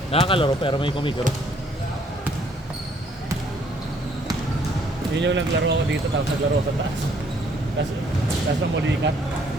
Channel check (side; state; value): both; normal; correlation 0.64